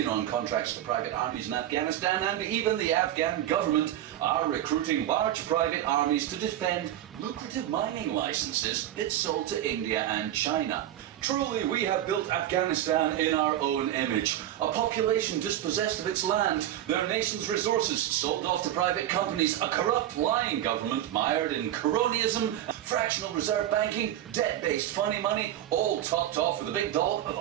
on contracts to private armies in Afghanistan, and even the Afghan government are recruiting large private armies to defend lucrative mining licenses it sold to India and China. Truly, we have built Afghanistan in our own image. A population dispossessed of its land, their nation's resources sold off to private companies, a corrupt, lying government mired in cronyism, fractional reserve banking, debt-based funny money, all topped off with a big dollop of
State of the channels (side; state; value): left; quieter; 12.3 dB